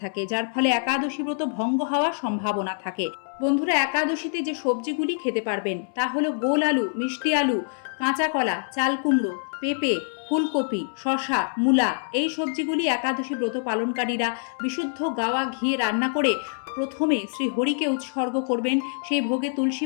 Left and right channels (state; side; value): silent; right; 62 dB below the other